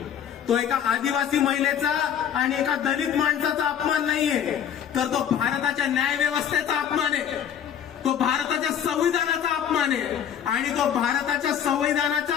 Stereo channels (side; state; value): right; quieter; 8.9 dB